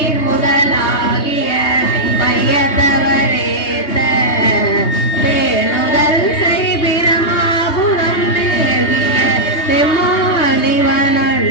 முதலாகிய மையத்தவரேத்த பேணுதல் செய் பிரமாபுரம் மேவிய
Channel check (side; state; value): right; late; 3.2 ms